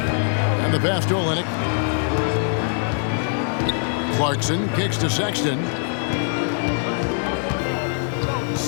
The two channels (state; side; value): silent; right; digital silence